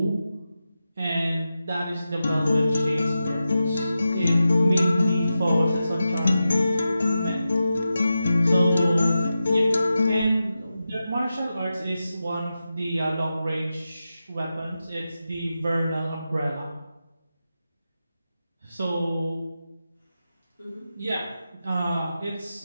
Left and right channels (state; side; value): inverted; both; correlation -0.91